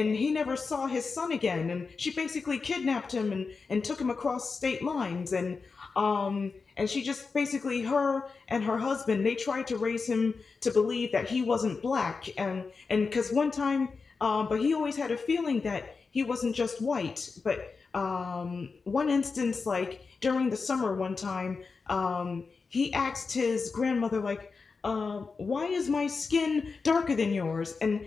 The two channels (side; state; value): right; quieter; 4.7 dB